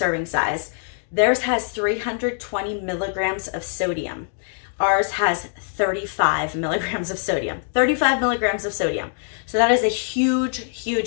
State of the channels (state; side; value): silent; right; digital silence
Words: size. Theirs has 320 milligrams of sodium. Ours has 35 milligrams of sodium. 35 milligrams of sodium. So that is a huge,